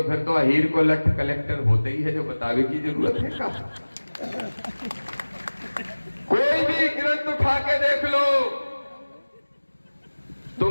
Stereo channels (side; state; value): both; inverted; correlation -1.00